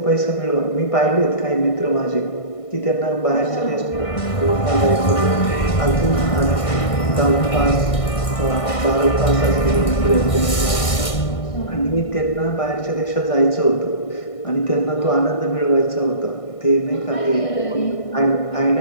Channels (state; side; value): late; right; 1.6 ms